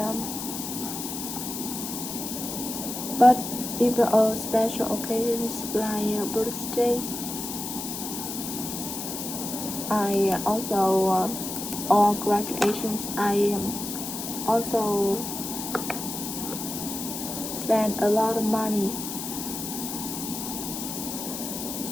but if special occasions like birthday, I also or graduations, I also spend a lot of money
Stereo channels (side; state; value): left; noise; hiss, 6 dB below the sound